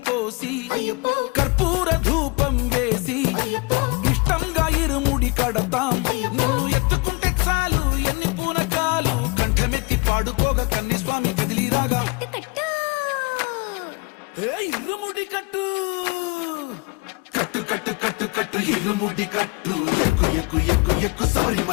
పోసి కర్పూర ధూపం వేసి ఇష్టంగా ఇరుముడి కడతాం. నువ్వు ఎత్తుకుంటే చాలు ఎన్ని పూనకాలు కంఠమెత్తి పాడుకోగా కన్యస్వామి కదిలిరాగా ఇరుముడి కట్టు కట్టు కట్టు కట్టు కట్టు ఇరుముడి కట్టు ఎక్కు ఎక్కు ఎక్కు ఎక్కు సారి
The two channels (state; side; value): quieter; right; 27.6 dB